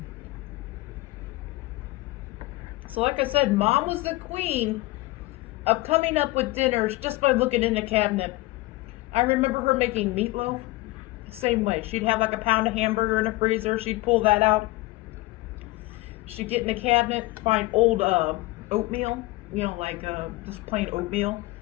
So like I said, Mom was the queen of coming up with dinners just by looking in the cabinet. I remember her making meatloaf the same way. She'd have like a pound of hamburger in the freezer. She'd pull that out. She'd get in the cabinet, find old oatmeal, you know, like just plain oatmeal.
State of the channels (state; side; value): quieter; right; 20.1 dB